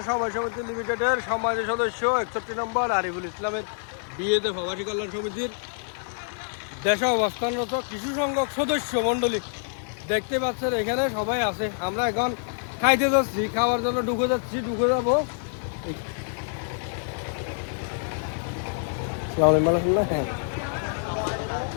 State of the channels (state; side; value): silent; right; digital silence